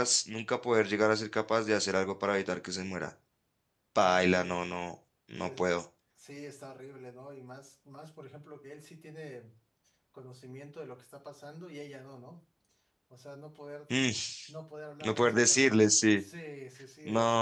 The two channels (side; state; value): both; identical; correlation 1.00